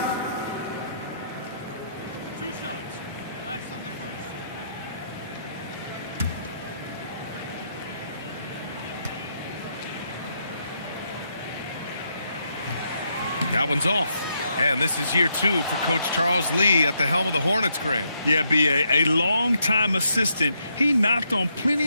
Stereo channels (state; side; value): inverted; both; correlation -0.77